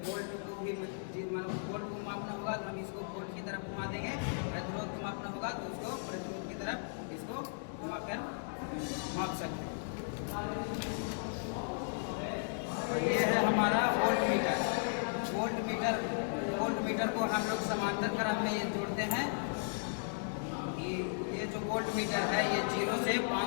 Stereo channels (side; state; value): right; silent; digital silence